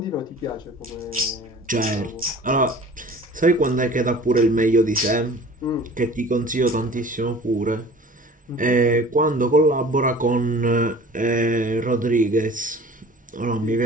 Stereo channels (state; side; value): normal; both; correlation 0.44